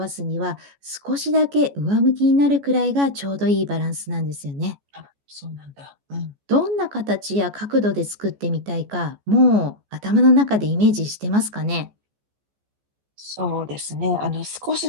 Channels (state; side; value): late; left; 14 ms